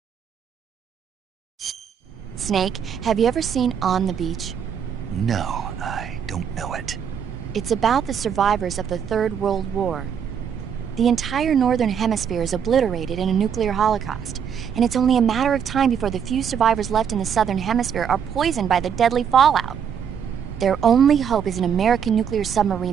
Snake, have you ever seen On the Beach? No, I don't know it. It's about the survivors of the Third World War. The entire Northern Hemisphere is obliterated in a nuclear holocaust, and it's only a matter of time before the few survivors left in the Southern Hemisphere are poisoned by the deadly fallout. Their only hope is an American nuclear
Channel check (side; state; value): left; quieter; 7.7 dB